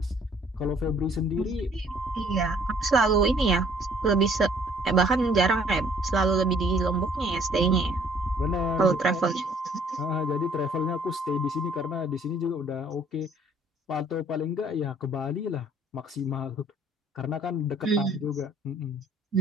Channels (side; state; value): both; normal; correlation 0.59